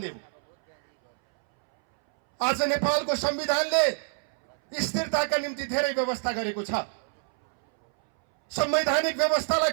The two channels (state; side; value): silent; left; 61 dB below the other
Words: हो। आज नेपालको संविधानले स्थिरताका निम्ति धेरै व्यवस्था गरेको छ। संवैधानिक व्यवस्थालाई